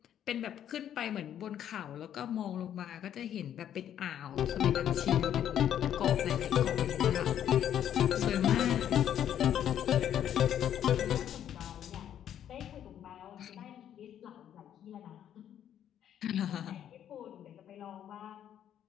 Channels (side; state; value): right; quieter; 10.2 dB